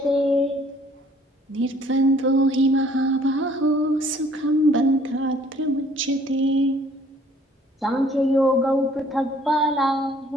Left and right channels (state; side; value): normal; both; correlation 0.58